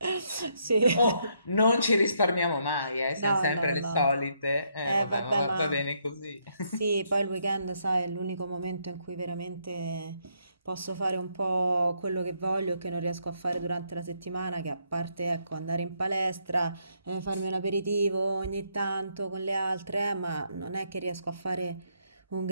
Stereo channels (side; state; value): both; inverted; correlation -0.74